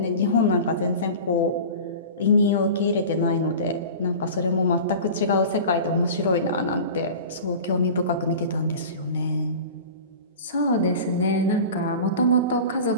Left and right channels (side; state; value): both; inverted; correlation -0.36